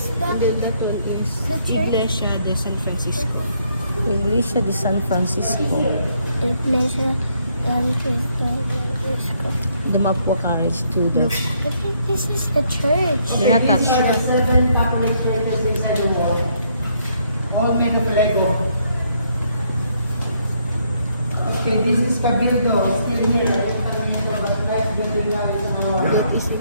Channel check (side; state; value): both; inverted; correlation -0.71